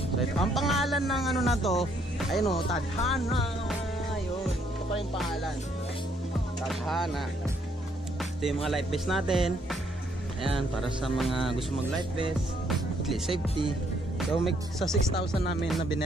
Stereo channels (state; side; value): normal; both; correlation 0.69